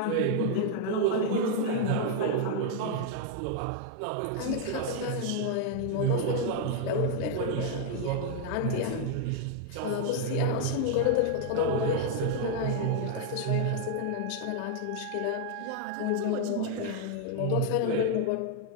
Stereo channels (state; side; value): different; both; correlation 0.00